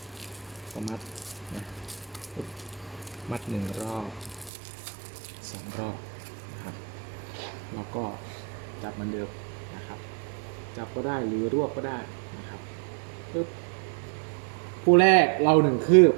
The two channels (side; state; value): left; drops out; at 4.5 s